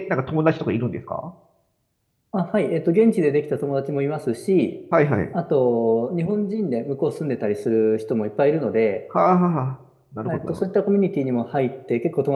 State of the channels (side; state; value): both; identical; correlation 1.00